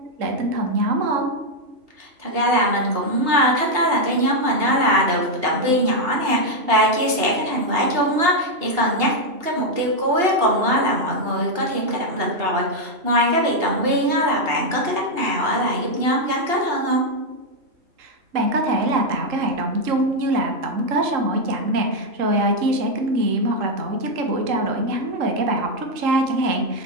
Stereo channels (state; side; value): late; left; 2.8 ms